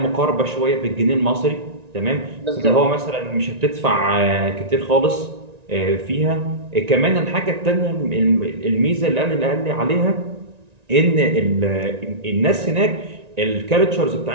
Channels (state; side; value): late; left; 1.9 ms